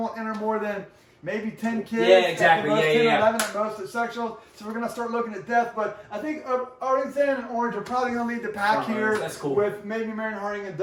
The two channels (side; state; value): both; identical; correlation 1.00